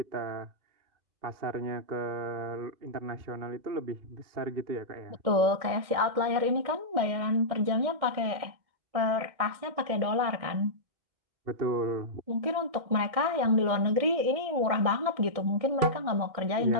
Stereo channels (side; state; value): left; late; 1.6 ms